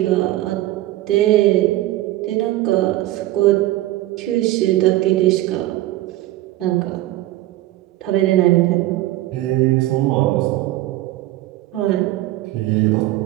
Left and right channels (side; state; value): left; quieter; 16.1 dB